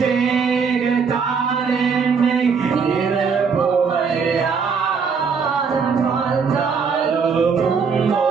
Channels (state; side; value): quieter; left; 5.7 dB